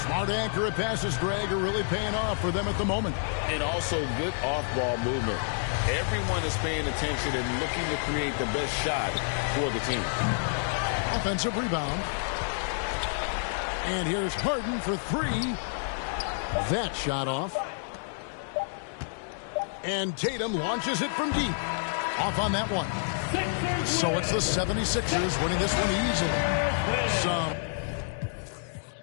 Smart accurate passes, Greg, are really paying off for them at the moment. And also good off-ball movement. Everyone is paying attention and looking to create the best shot for the team. Offensive rebound. And here's Harden for 3. That shot off. And Tatum launches it from deep. Off on that one. So it's the 76ers winning this one easily.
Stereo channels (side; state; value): right; silent; digital silence